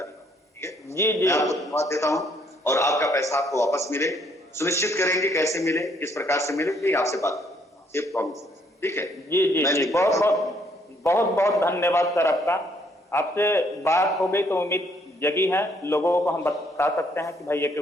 ठीक है जी, मैं आपको धन्यवाद देता हूँ और आपका पैसा आपको वापस मिले सुनिश्चित करेंगे। कैसे मिले, किस प्रकार से मिले, ये आपसे बात ये प्रॉमिस। ठीक है जी बहुत बहुत धन्यवाद सर आपका। आपसे बात हो गई तो उम्मीद जगी है, लोगों को हम बता सकते हैं कि भाई एक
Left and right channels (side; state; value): both; normal; correlation 0.67